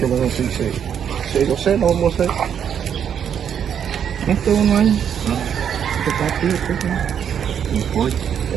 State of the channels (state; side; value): quieter; left; 8.4 dB